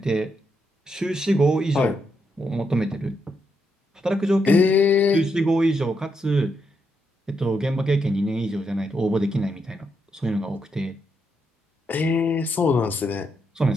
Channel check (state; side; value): normal; both; correlation 0.80